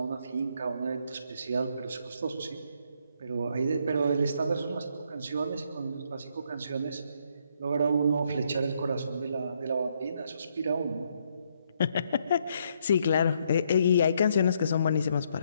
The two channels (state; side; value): inverted; both; correlation -0.73